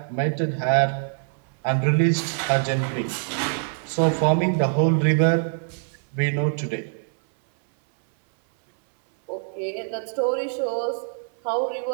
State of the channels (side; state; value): left; silent; 60 dB below the other